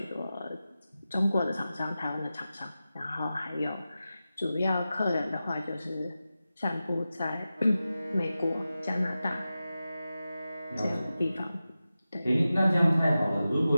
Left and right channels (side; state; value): both; inverted; correlation -0.93